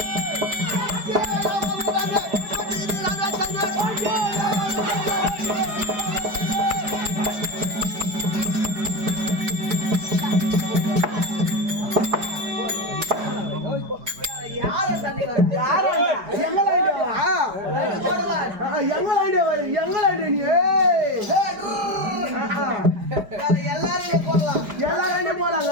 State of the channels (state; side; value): late; left; 4.9 ms